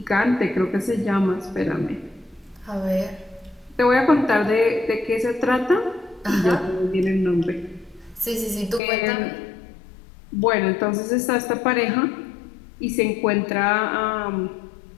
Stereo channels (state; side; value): drops out; right; at 8.8 s